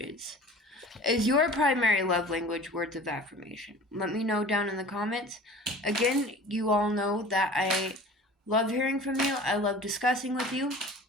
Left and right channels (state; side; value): normal; both; correlation 0.42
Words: Is your primary love language words of affirmation? Let me know down in the comments. Again, you all know that I love hearing from you. I love discussing with you.